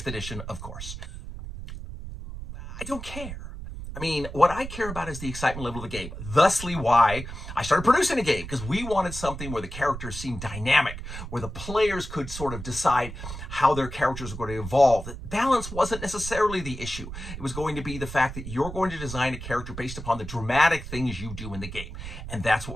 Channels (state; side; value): noise; right; rumble, 9 dB below the sound